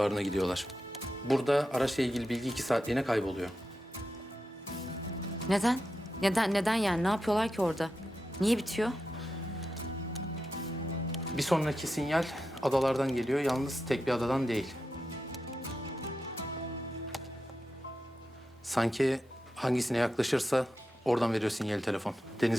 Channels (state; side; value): normal; both; correlation 0.89